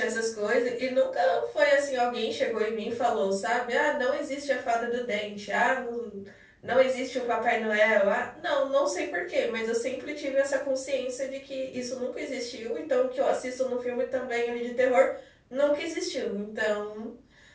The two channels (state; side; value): identical; both; correlation 1.00